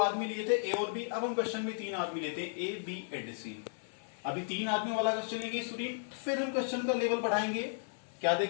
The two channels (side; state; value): right; silent; 55 dB below the other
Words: लिए थे, ए और बी, अब हम क्वेश्चन में 3 आदमी लेते हैं, ए बी एंड सी। अभी 3 आदमी वाला क्वेश्चन लेंगे स्टूडेंट, फिर हम क्वेश्चन का लेवल बढ़ाएंगे। क्या